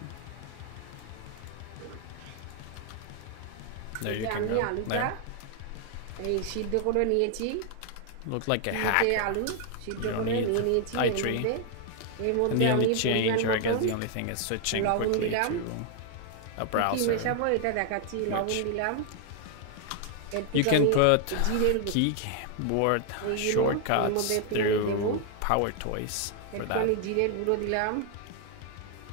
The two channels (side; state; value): both; different; correlation 0.00